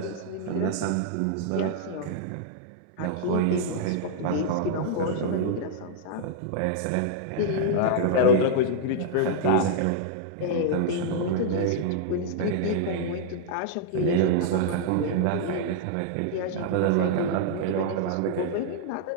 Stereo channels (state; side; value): different; both; correlation -0.01